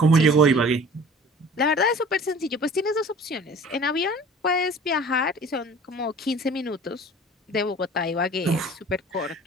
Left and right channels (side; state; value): both; normal; correlation 0.46